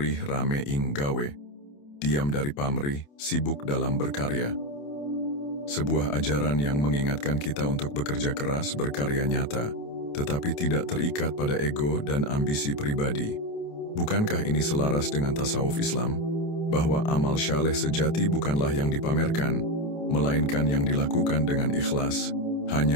rame ing gawe. Diam dari pamrih, sibuk dalam berkarya. Sebuah ajaran yang mengingatkan kita untuk bekerja keras, berkarya nyata, tetapi tidak terikat pada ego dan ambisi pribadi. Bukankah ini selaras dengan tasawuf Islam? Bahwa amal syaleh sejati bukanlah yang dipamerkan, melainkan yang dilakukan dengan ikhlas,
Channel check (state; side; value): late; right; 28 ms